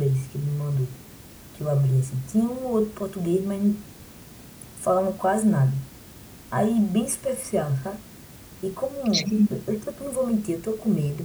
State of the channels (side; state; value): both; identical; correlation 1.00